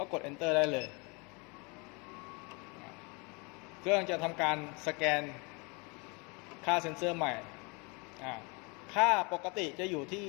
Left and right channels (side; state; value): right; quieter; 30.4 dB